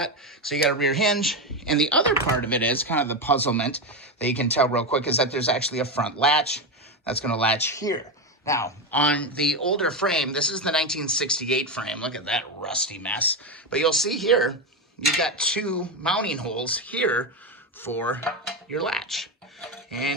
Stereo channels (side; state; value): both; normal; correlation 0.12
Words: So you got a rear hinge. And the other part of it is kind of the puzzlement that you can tell real quick is that there's actually a front latch that's going to latch here. Now, on the older frame, this is the 1968 frame. Look at that rusty mess. But you'll see here, you've got two mounting holes here for your latch.